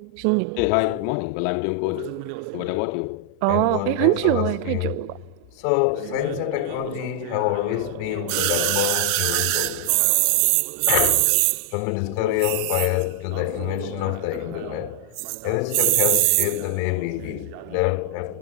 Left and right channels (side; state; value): both; different; correlation 0.00